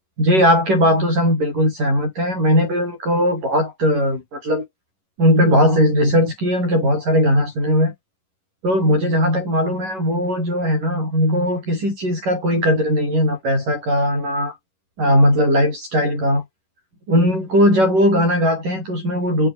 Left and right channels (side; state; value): left; late; 11 ms